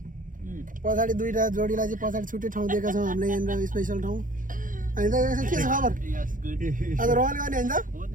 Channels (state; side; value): late; left; 0.39 ms